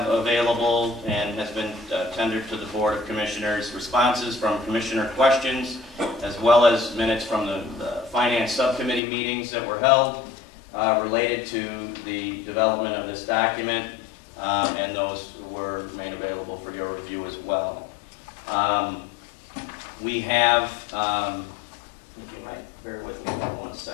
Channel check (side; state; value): right; drops out; at 9.0 s